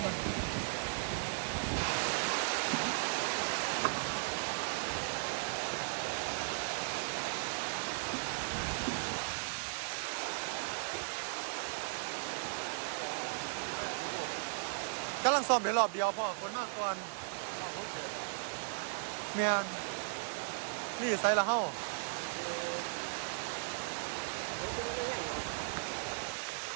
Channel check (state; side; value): silent; left; 53 dB below the other